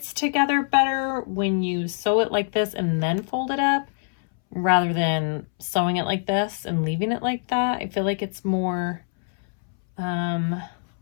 together better when you sew it like this and then fold it up rather than sewing it like this and leaving it like that. I feel like it's more,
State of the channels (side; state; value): right; silent; 62 dB below the other